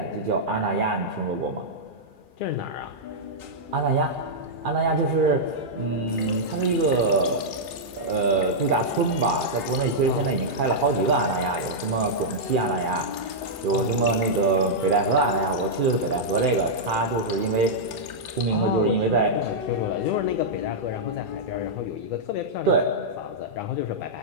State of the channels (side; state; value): left; late; 2.4 ms